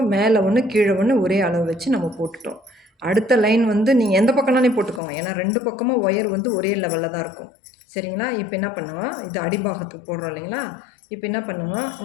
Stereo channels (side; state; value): right; drops out; at 5.0 s